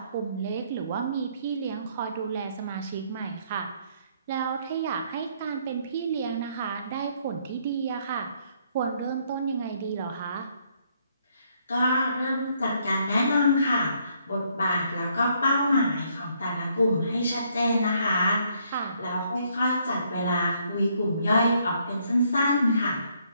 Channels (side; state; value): both; inverted; correlation -0.69